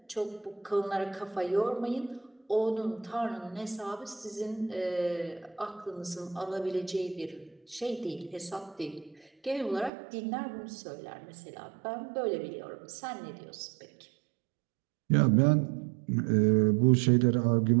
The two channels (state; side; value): drops out; left; at 9.9 s